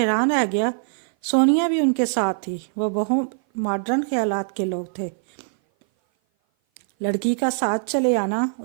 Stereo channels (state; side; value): silent; left; 57 dB below the other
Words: رہ گیا، سونیا بھی ان کے ساتھ تھی۔ وہ بہت ماڈرن خیالات کے لوگ تھے۔ لڑکی کا ساتھ چلے آنا